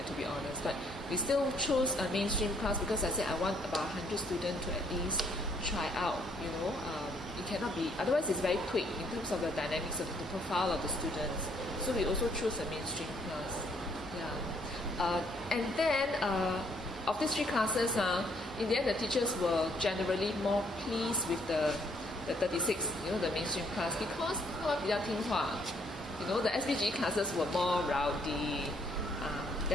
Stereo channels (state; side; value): normal; both; correlation 0.68